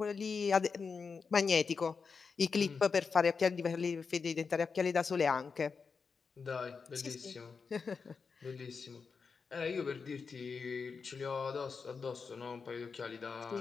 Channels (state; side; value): quieter; right; 5.3 dB